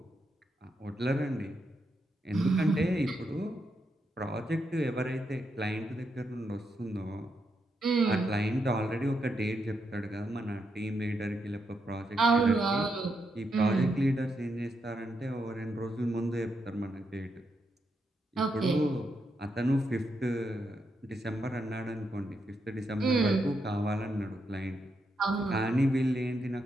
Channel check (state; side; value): normal; both; correlation 0.82